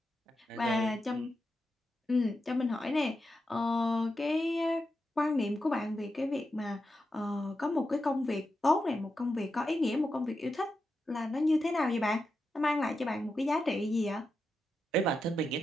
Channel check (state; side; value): normal; both; correlation 0.88